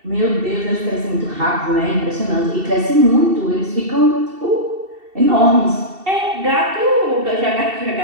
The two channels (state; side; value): late; left; 2.7 ms